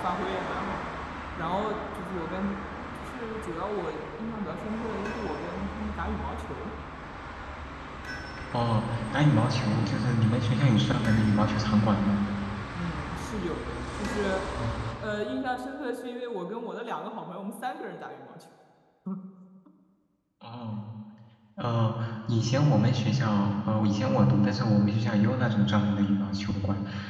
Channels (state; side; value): identical; both; correlation 1.00